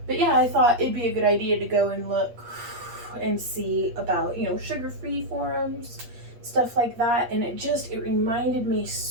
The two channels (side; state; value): left; late; 8.4 ms